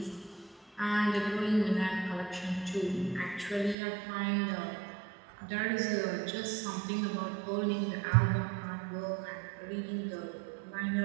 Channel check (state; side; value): drops out; left; at 3.8 s